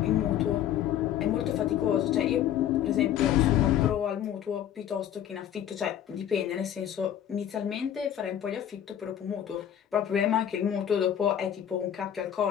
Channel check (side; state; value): right; quieter; 10.3 dB